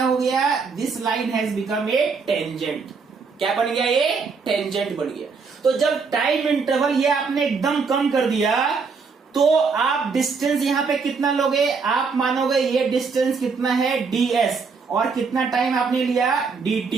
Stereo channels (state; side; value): quieter; left; 5.0 dB